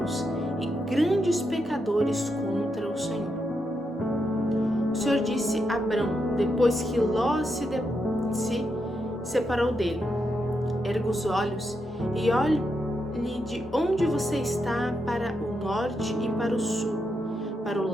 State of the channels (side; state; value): both; normal; correlation 0.83